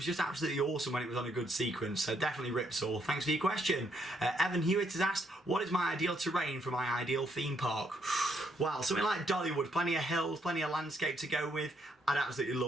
just absolutely awesome when it was on a good sequence. So definitely Ripsaw. Thanks for your question. Evan Hewitt has asked, what is my ideal terrain for my ideal theme park? Well, something like Dollywood, plenty of hills, plenty of landscape to go with. I'd absolutely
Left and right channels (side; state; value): both; normal; correlation 0.73